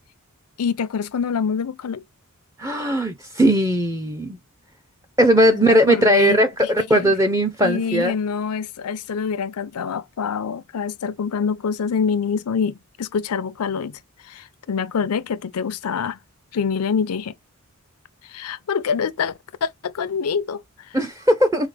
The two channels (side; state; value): both; normal; correlation 0.37